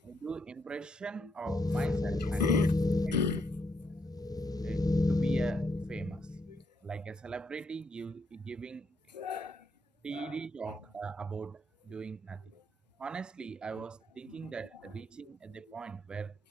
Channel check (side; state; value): both; normal; correlation 0.76